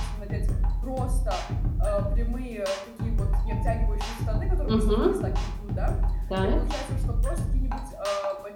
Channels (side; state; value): both; identical; correlation 1.00